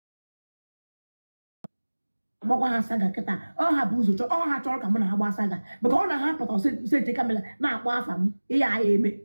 Gbakwa ha saga kịta ọ ha bụ ụzọ ọ ha chọrọ ka mụ na ha gbaa saga maka ọ na ha pụta sete kamera na-akpọ afa m ihe a eme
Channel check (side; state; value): both; inverted; correlation -1.00